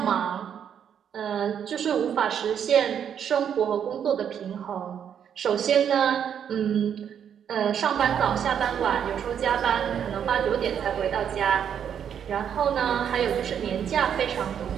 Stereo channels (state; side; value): quieter; left; 8.5 dB